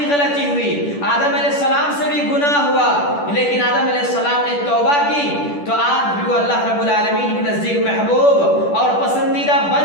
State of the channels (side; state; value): right; late; 10 ms